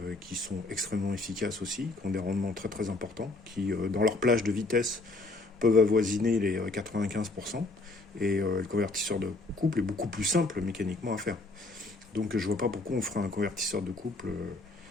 qui sont extrêmement efficaces aussi, qui ont des rendements très très importants, qui dans leur plage de vitesse peuvent avoisiner les 95%. Et le convertisseur de couple est beaucoup plus simple mécaniquement à faire. Donc je vois pas pourquoi on ferait un convertisseur de couple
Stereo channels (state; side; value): quieter; right; 3.2 dB